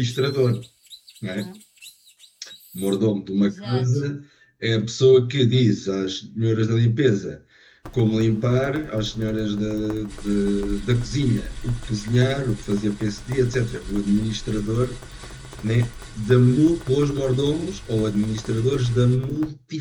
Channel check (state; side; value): identical; both; correlation 1.00